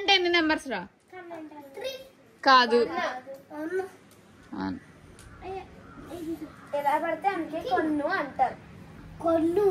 ఎన్ని నెంబర్స్ రా? కాదు ఎలా పడితే అందుకే కొన్ను అంటారు. కొన్ను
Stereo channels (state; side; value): identical; both; correlation 1.00